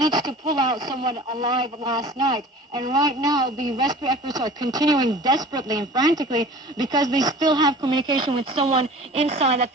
to pull out someone alive last night. And right now, the rescue efforts are continuing desperately and frantically because they still have communication with someone inside that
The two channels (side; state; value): both; normal; correlation 0.43